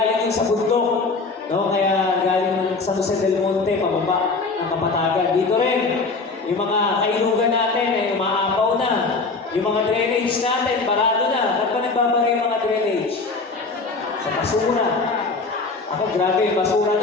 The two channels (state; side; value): quieter; right; 4.0 dB